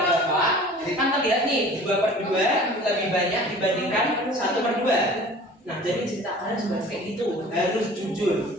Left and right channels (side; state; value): both; normal; correlation 0.44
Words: Bapak. Kan terlihat nih 2/2 lebih banyak dibandingkan 1/2. Nah, jadi cerita kalian juga kayak gitu, harus jujur.